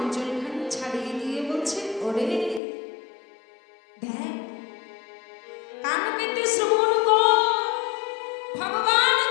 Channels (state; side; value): drops out; right; at 2.6 s